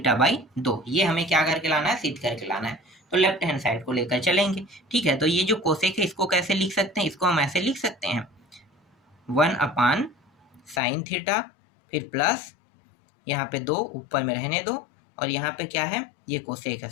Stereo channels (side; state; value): right; drops out; at 10.8 s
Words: by 2। ये हमें क्या करके लाना है, सिद्ध करके लाना है। तो लेफ्ट हैंड साइड को लेकर चलेंगे। ठीक है, तो ये जो कोसेक है इसको कैसे लिख सकते हैं, इसको हम ऐसे लिख सकते हैं 1 अपान साइन थीटा, फिर प्लस यहाँ पे 2 ऊपर में रहने दो, और यहाँ पे क्या है, ये कोसेक है,